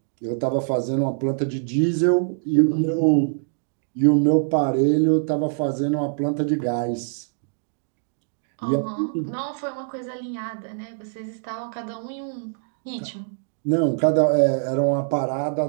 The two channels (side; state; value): left; silent; digital silence